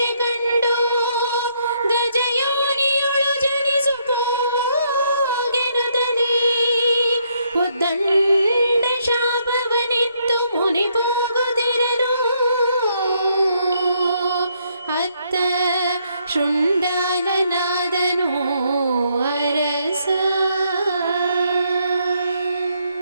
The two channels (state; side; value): inverted; both; correlation -0.73